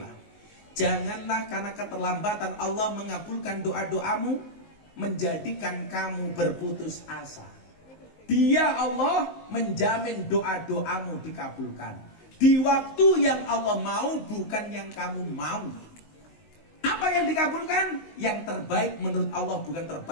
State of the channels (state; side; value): late; right; 19 ms